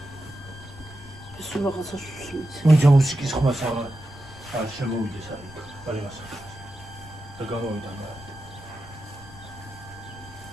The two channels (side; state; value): left; noise; rumble, 17 dB below the sound